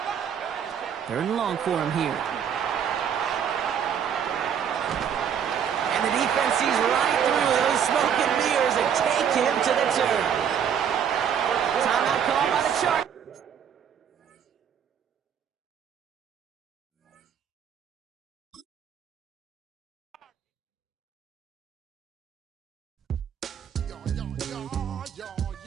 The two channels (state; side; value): quieter; left; 8.2 dB